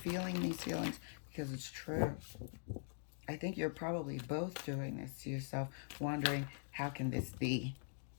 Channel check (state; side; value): silent; right; digital silence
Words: these feelings because it's true. I think you're probably both doing this to yourself, wondering, how can this be?